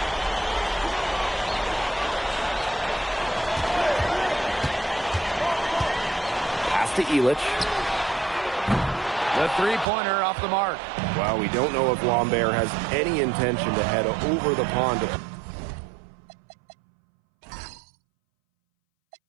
Pass to Elich. The three-pointer off the mark. Well, we don't know if Lambert has any intention to head over the pond to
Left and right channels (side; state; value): left; drops out; at 9.9 s